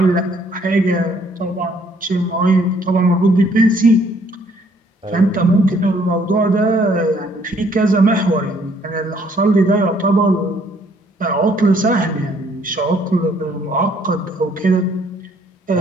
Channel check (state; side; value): normal; both; correlation 0.64